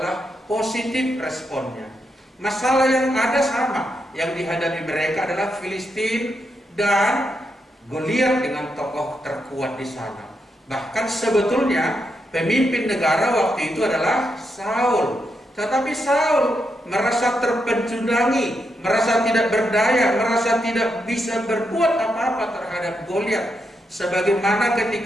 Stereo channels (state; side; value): normal; both; correlation 0.82